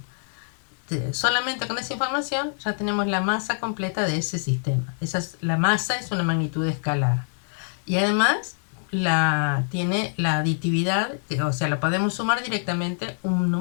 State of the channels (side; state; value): right; silent; digital silence